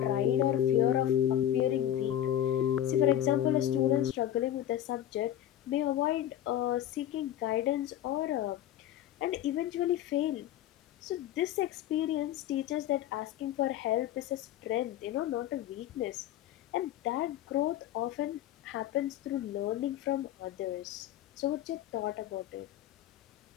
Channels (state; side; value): quieter; right; 11.7 dB